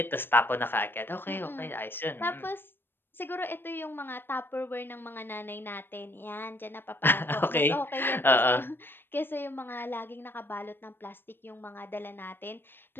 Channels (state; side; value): late; right; 0.099 ms